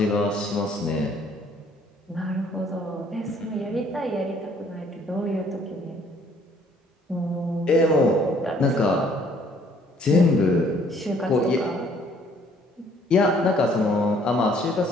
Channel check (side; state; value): both; normal; correlation 0.61